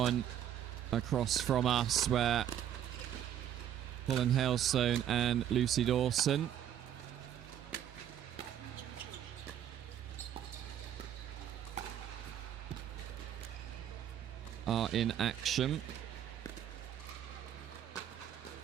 across from us, where Colin Hailstone and Lucy Dawson are in action.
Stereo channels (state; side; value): quieter; left; 10.4 dB